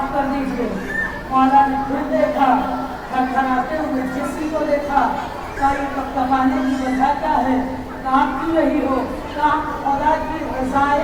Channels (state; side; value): identical; both; correlation 1.00